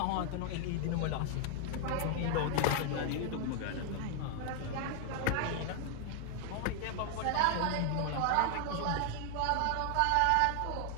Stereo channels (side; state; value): both; different; correlation 0.00